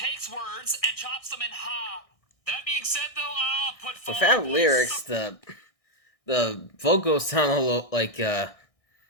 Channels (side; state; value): right; late; 1.6 ms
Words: words and chops them in ha. That being said, though, I'll put without lyrics, the vocals sound a little like I